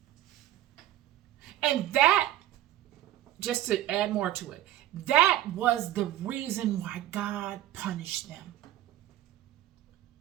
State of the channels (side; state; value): left; quieter; 13.4 dB